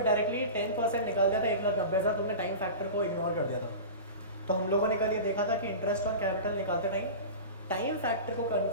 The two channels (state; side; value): inverted; both; correlation -0.31